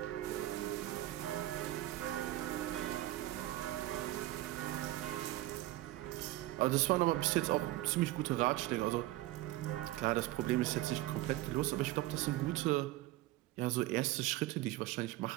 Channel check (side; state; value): left; quieter; 16.6 dB